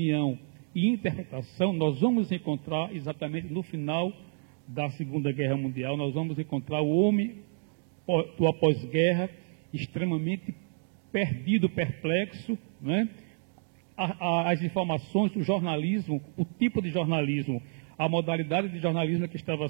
e interpretação. Nós vamos encontrar exatamente no final da Segunda Guerra Mundial, nós vamos encontrar o homem do após-guerra extremamente perdido, perplexo, né? As informações, o jornalismo, o tipo de jornalismo, a modalidade de jornalismo que estava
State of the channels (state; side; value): silent; left; 58 dB below the other